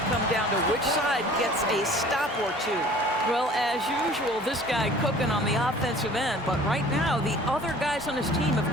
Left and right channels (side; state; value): both; normal; correlation 0.48